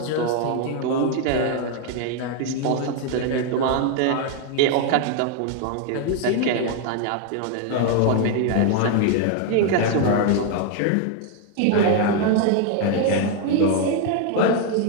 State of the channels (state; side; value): different; both; correlation 0.01